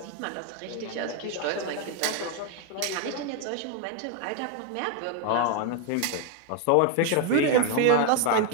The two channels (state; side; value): different; both; correlation 0.01